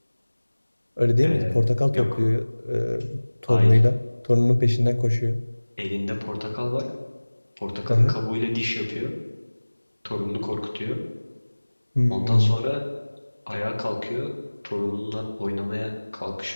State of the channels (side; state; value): both; inverted; correlation -1.00